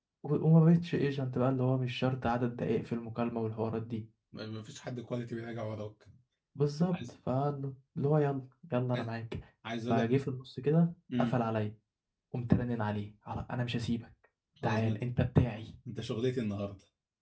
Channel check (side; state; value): both; identical; correlation 1.00